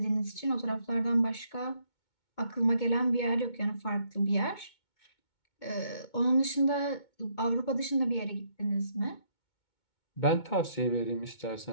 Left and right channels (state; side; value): late; right; 2.2 ms